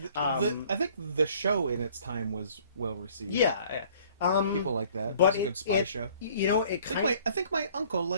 I think the show in its time was well received. Yeah. People like that. But It was a good spy show. It kind of. I think my uncle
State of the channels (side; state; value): both; inverted; correlation -0.55